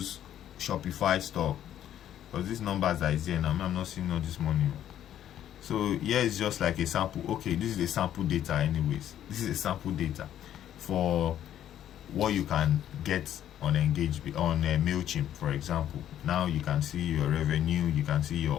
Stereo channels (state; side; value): quieter; right; 11.0 dB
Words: Shopify store, because these numbers that is here now, I'm not seeing all this money. So here is just like a sample. Okay, this is a sample data anyways. This is a sample data for what you can get on MailChimp, for example. Now you can see your revenue, you can see your